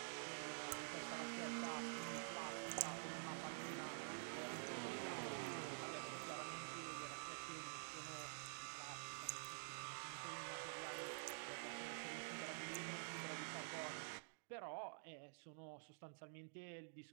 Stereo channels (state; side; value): silent; left; digital silence